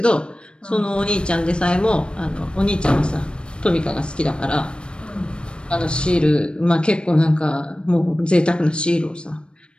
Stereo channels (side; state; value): right; late; 0.056 ms